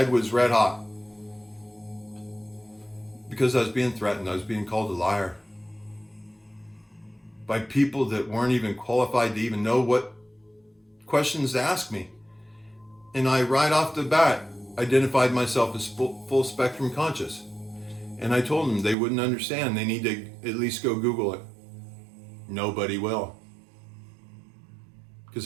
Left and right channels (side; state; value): left; drops out; at 18.9 s